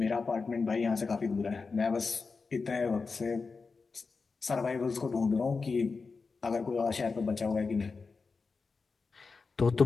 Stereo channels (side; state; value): right; quieter; 4.5 dB